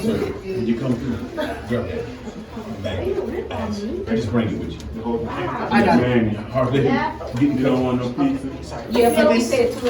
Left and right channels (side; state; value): both; identical; correlation 1.00